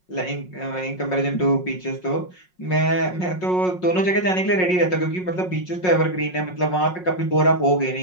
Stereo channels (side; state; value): right; late; 5.5 ms